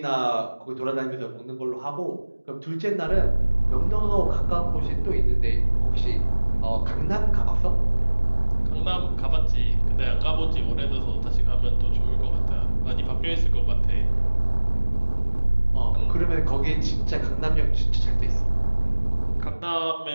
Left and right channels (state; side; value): inverted; both; correlation -1.00